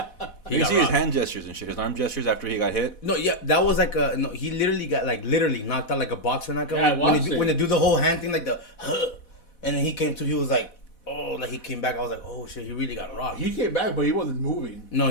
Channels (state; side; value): late; right; 4.1 ms